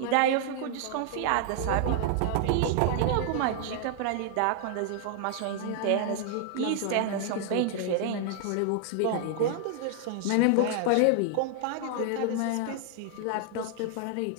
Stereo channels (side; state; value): both; different; correlation 0.00